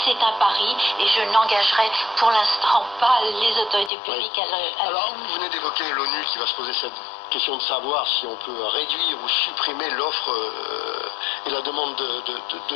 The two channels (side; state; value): right; drops out; at 3.9 s